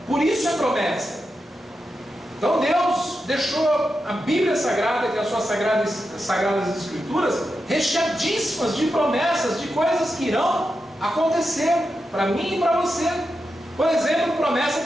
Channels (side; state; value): both; normal; correlation 0.88